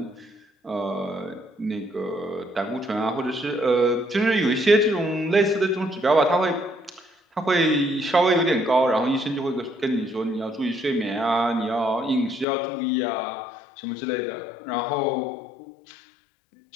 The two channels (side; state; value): right; drops out; at 12.5 s